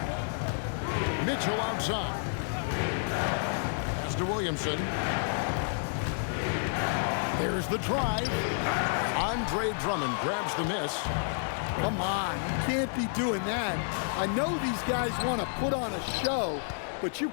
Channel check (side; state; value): right; silent; digital silence